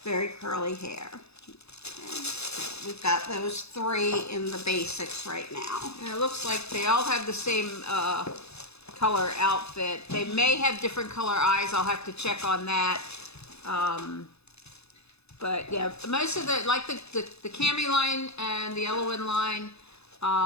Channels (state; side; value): late; right; 0.79 ms